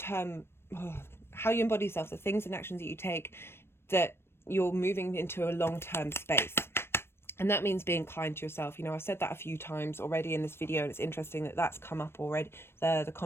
How you embody yourself, the things and actions that you take, that you're moving into a long-term space. And that means being kind to yourself. I've said that a few times already in this video, and it's interesting that that's come up already, the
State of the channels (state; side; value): late; right; 0.12 ms